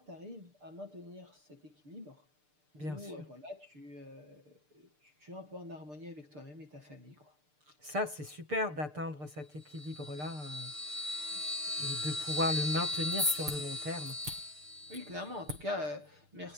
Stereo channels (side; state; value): left; late; 6.7 ms